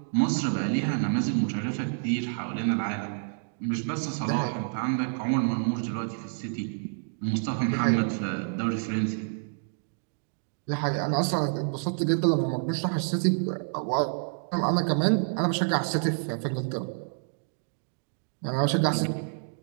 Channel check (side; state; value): left; silent; digital silence